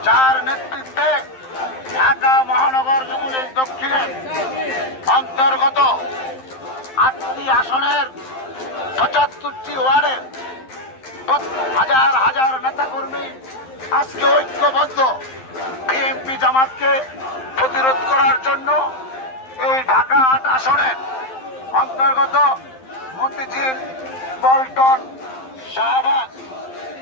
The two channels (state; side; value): late; right; 11 ms